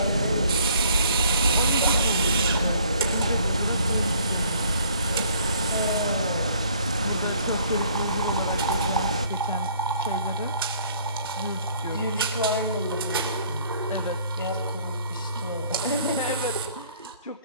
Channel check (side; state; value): both; inverted; correlation -0.58